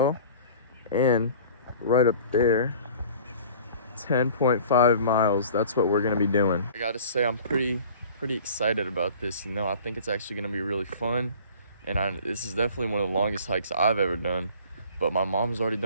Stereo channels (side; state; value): both; inverted; correlation -0.46